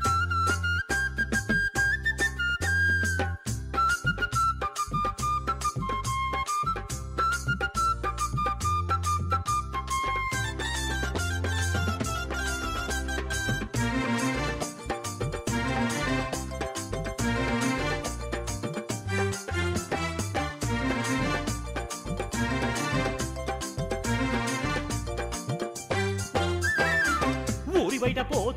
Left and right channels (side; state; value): both; identical; correlation 1.00